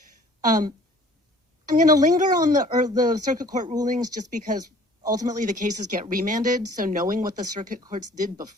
I'm going to linger on the circuit court rulings just because ultimately the cases get remanded, so knowing what the circuit courts did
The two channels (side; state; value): both; normal; correlation 0.52